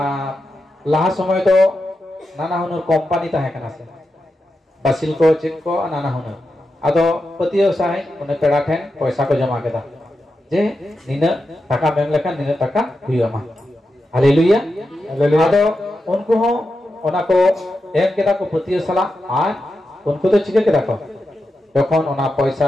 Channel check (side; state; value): both; normal; correlation 0.89